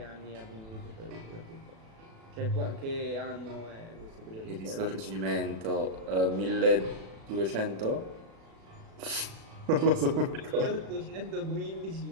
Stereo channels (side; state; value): left; late; 36 ms